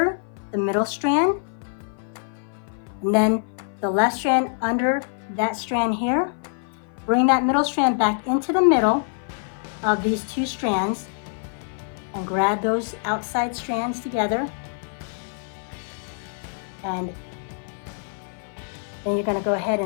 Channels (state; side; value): silent; right; 56 dB below the other